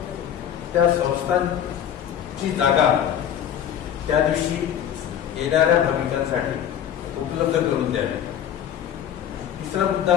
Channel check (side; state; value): right; quieter; 9.7 dB